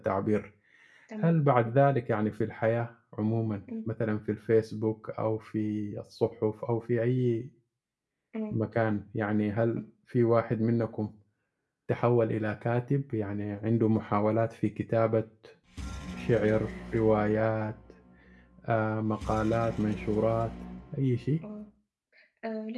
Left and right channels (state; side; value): identical; both; correlation 1.00